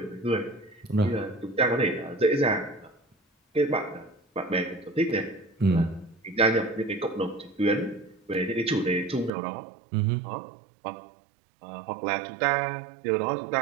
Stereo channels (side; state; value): left; drops out; at 9.3 s